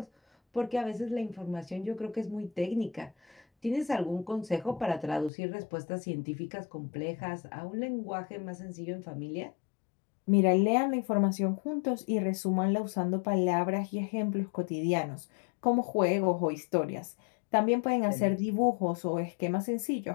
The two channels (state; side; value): drops out; right; at 5.3 s